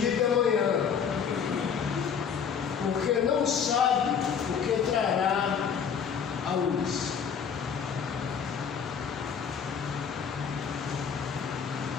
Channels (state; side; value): quieter; right; 7.0 dB